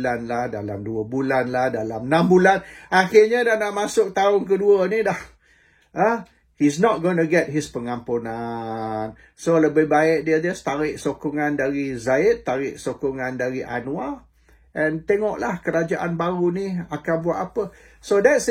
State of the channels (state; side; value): identical; both; correlation 1.00